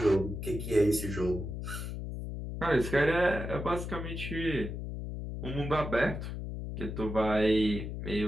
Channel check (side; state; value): left; noise; hum, 6 dB below the sound